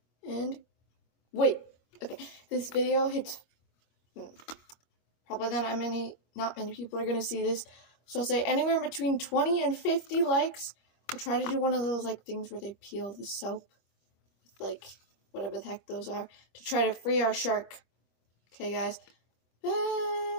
And, wait. Okay, this video hits... Probably not many people are going to see this. So I'll say anywhere between 20 and 50 likes. I'll try to do one of those like things where they peel the soap with like whatever the heck those are to try to free our shark. Okay, guys. Bye.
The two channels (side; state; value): right; late; 25 ms